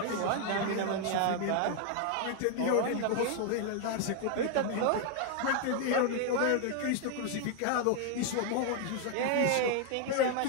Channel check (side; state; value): both; different; correlation 0.00